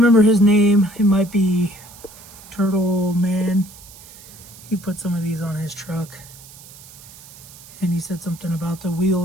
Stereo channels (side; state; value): right; noise; hiss, 20 dB below the sound